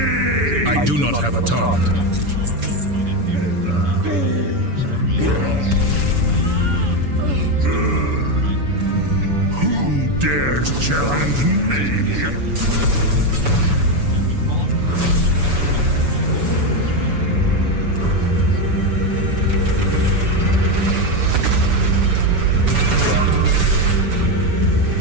I do not have a taunt. Who dares challenge me?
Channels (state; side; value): late; left; 7.0 ms